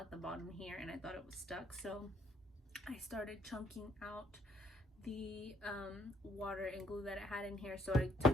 the bottom here and I thought it was stuck, so I started chunking out the water and glue that it had in here. So I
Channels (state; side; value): normal; both; correlation 0.66